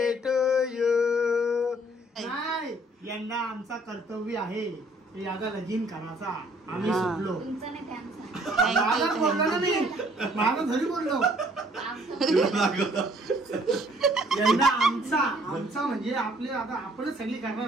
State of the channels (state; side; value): normal; both; correlation 0.60